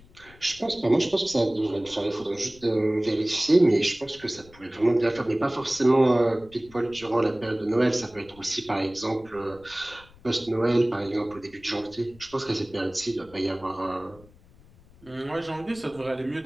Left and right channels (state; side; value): noise; left; rumble, 25 dB below the sound